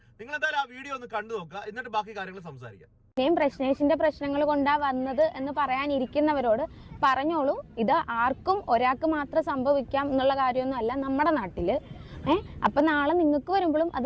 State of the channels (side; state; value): both; identical; correlation 1.00